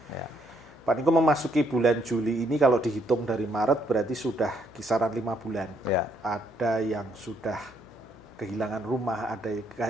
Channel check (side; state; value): left; noise; hum, 24 dB below the sound